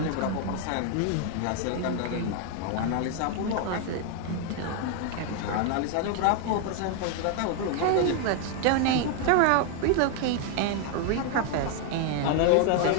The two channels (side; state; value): both; different; correlation 0.00